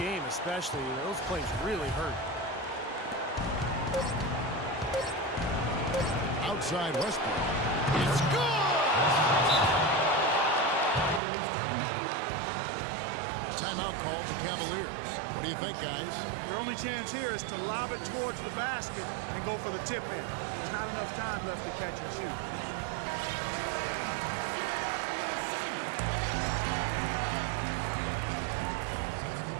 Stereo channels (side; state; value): left; drops out; at 11.2 s